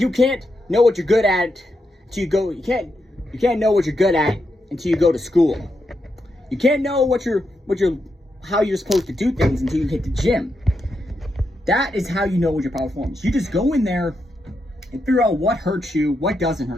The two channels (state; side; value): normal; both; correlation 0.84